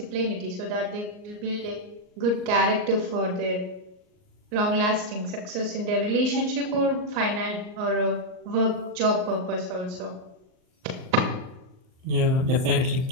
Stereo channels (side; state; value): left; late; 38 ms